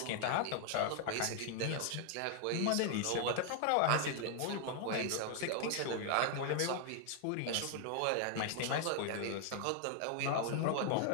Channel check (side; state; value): both; different; correlation 0.00